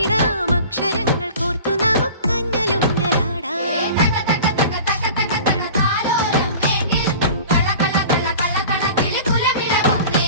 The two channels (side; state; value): both; inverted; correlation -0.40